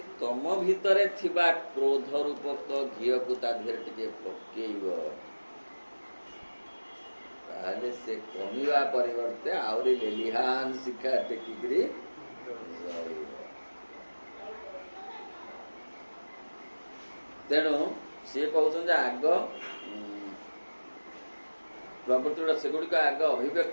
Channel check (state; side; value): inverted; both; correlation -1.00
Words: ତମ ଭିତରେ ଥିବା କ୍ରୋଧ ରୂପକ ଘିଅକୁ ତା ଦେହରେ ଟିକେ ପକେଇବ, ତାହେଲେ ସେ କମିବା ପରିବର୍ତ୍ତେ ଆହୁରି ଲେଲିହାନ ଶିଖା ଟେକିକିରି ରହିବ। ତେଣୁ ସିଏ କହୁଛନ୍ତି ଆଗ ପ୍ରବୃତ୍ତି ଗୁଡ଼ା ସେଗୁଡ଼ିକ ଆଗ